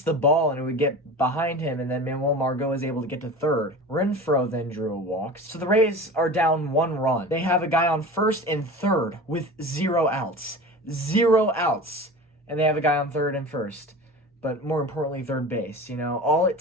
the ball, and it would get behind him, and then Manuel Margot is able to get to third. Renfroe then drew a walk. So the Rays are down 1 run. They have a guy on first and third with 0 outs. 0 outs. And they have a guy on third and first. But more importantly, third base. All it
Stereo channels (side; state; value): both; normal; correlation 0.34